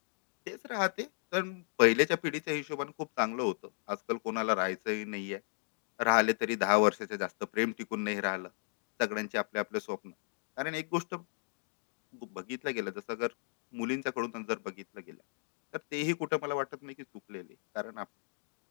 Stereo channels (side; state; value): right; silent; digital silence